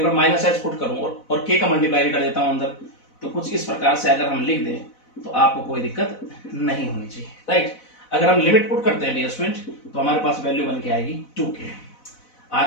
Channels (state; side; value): late; right; 4.0 ms